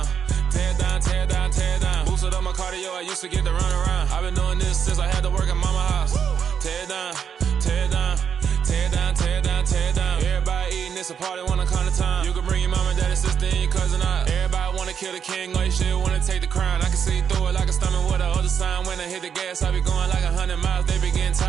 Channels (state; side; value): quieter; left; 7.6 dB